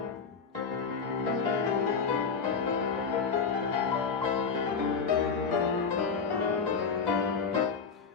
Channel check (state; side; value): quieter; right; 5.5 dB